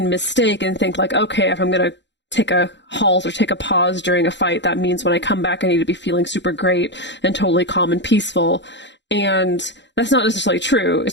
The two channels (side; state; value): right; late; 0.52 ms